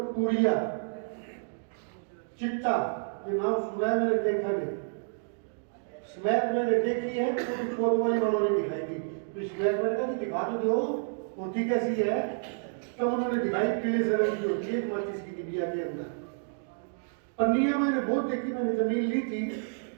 पुड़िया, चिट्टा, ये नाम सुना है, मैंने देखा नहीं। स्मैक मैंने देखी है, तो भी वाली वालों ने दिखाई थी, तो स्मैक मैंने कहा दिखा तो दो होती कैसी है, तब उन्होंने दिखाई पीले से रंग की होती है, माचिस की डिबिया के अंदर। पन्नियां मैंने बहुत देखी, मैंने जमीन ली थी,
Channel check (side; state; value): left; silent; digital silence